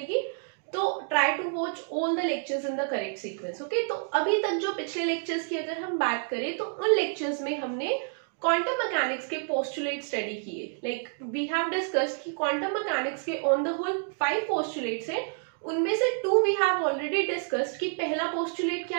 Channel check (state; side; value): silent; left; 59 dB below the other